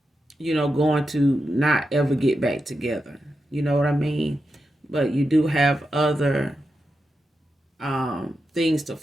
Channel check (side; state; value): both; normal; correlation 0.88